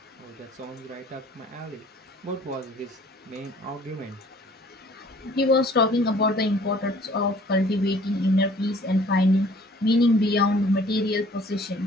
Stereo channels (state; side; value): normal; both; correlation 0.54